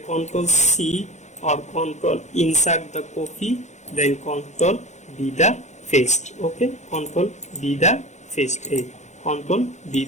C or Ctrl insert the copy, then Ctrl B the paste. Okay, Ctrl B the paste. Ctrl B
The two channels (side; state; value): right; late; 0.34 ms